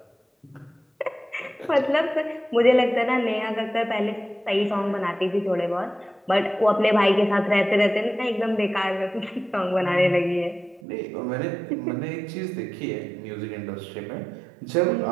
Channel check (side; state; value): left; drops out; at 10.8 s